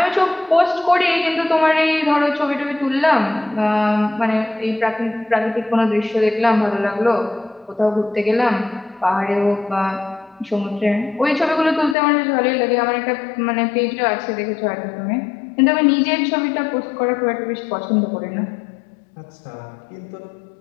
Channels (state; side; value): drops out; right; at 12.0 s